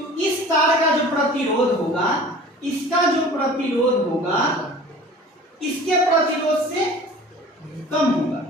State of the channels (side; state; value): both; normal; correlation 0.43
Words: इस तार का जो प्रतिरोध होगा, इसका जो प्रतिरोध होगा इसके प्रतिरोध से कम होगा।